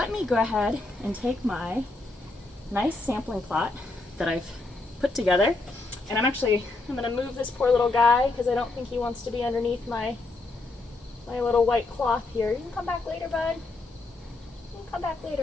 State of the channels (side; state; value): right; quieter; 3.2 dB